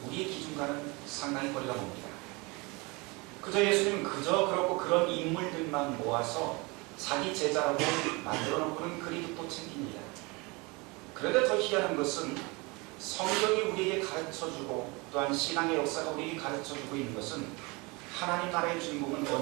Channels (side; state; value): left; quieter; 26.7 dB